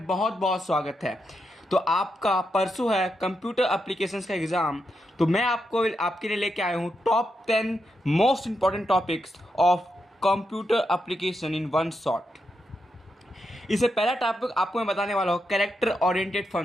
बहुत स्वागत है। तो आपका परसों है कंप्यूटर एप्लीकेशंस का एग्ज़ाम। तो मैं आपके लिए लेके आया हूँ top 10 most important topics of computer application in one shot. इससे पहला टॉपिक आपको मैं बताने वाला हूँ कैरेक्टर ओरिएंटेड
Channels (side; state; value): both; normal; correlation 0.84